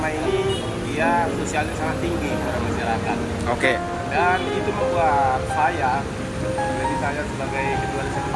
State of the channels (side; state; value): both; identical; correlation 1.00